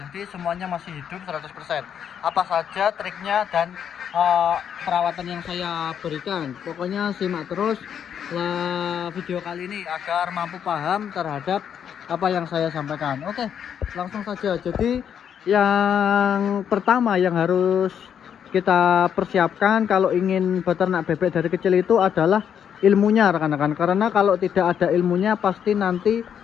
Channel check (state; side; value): quieter; right; 8.4 dB